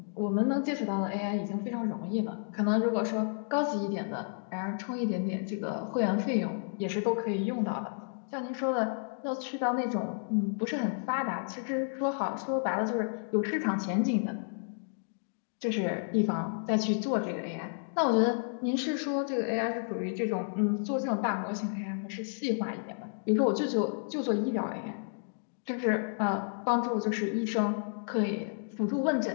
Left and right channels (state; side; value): silent; right; digital silence